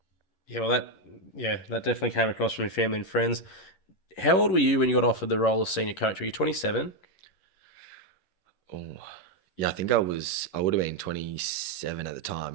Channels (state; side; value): late; right; 11 ms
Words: Yeah, well, that definitely came across from your family and friends. How old were you when you got offered the role of senior coach? Were you 27? Oh, yeah, I think I would have been 27 at the